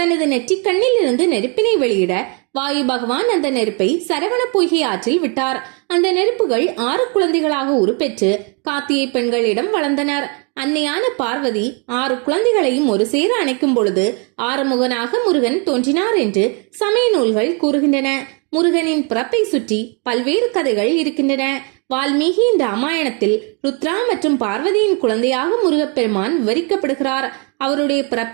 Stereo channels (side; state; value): left; quieter; 35.1 dB